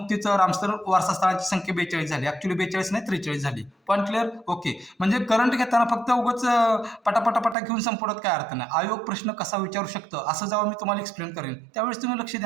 रामसर वारसा स्थळांची संख्या 42 झाली. ऍक्च्युली 42 नाही, 43 झाली. Point clear? ओके. म्हणजे करंट घेताना फक्त उगाच पटापटा घेऊन संपवण्यात काय अर्थ नाही. आयोग प्रश्न कसा विचारू शकतं असं जेव्हा मी तुम्हाला एक्सप्लेन करेन त्यावेळेस तुम्ही लक्ष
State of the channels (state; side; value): drops out; left; at 7.6 s